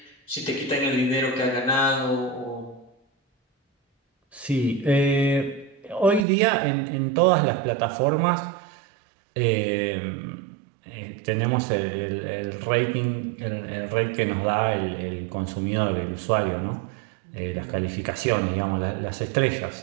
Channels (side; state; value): left; drops out; at 6.2 s